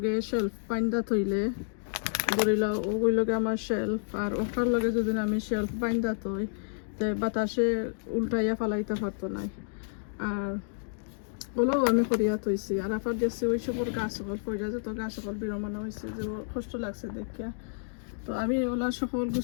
শেলফ বাইন্দা থইলে ধরিলা ওই লগে আমার শেলফ আর ওটার লগে যদি আমি শেলফ বাইন্দা থই তে বাতাসে উল্টাইয়া ফালাইতে পারতো নাই আর ওলাও আমি করিয়া থইছি আর আফার দেখছি ওই সবর গাছ সকল পয়সা যত গাছ সকল বিরমানো হয়েছে যে কষ্ট লাগছে দেখিয়া তো আমি ওলা সকল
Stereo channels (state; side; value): silent; right; digital silence